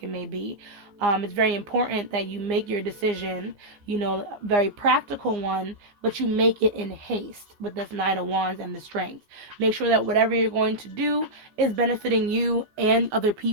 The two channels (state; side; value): late; left; 15 ms